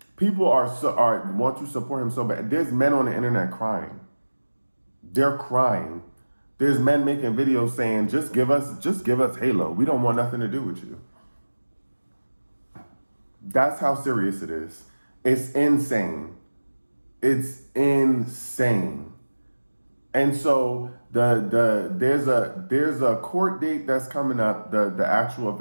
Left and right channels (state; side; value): inverted; both; correlation -1.00